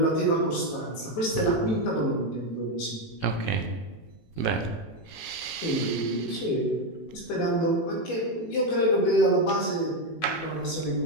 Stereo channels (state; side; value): late; right; 18 ms